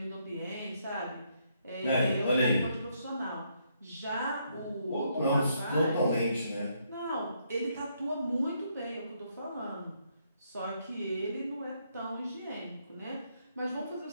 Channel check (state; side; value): inverted; both; correlation -0.74